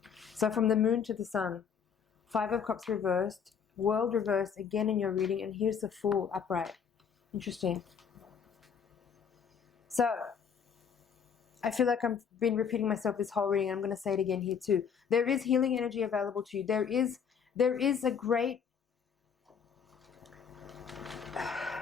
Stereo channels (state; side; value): quieter; right; 7.0 dB